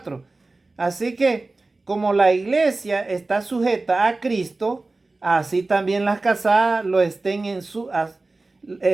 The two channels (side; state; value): left; quieter; 3.3 dB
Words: Así que, como la iglesia está sujeta a Cristo, así también las casadas lo estén